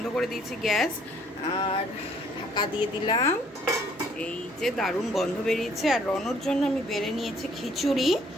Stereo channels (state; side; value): normal; both; correlation 0.62